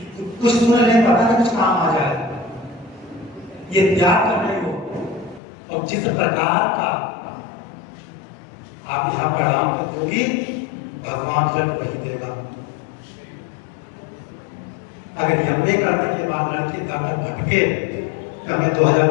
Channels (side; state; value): right; drops out; at 5.4 s